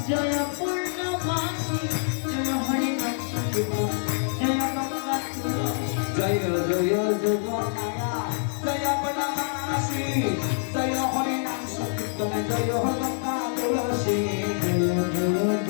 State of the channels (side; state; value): right; silent; digital silence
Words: জয় পূর্ণমাসী জয় হরি নাম সংকীর্তন জয় গঙ্গা তুলসী। জয় জয় যোগ মায়া জয় পূর্ণমাসী জয় হরি নাম সংকীর্তন জয় গঙ্গা তুলসী জয় জয়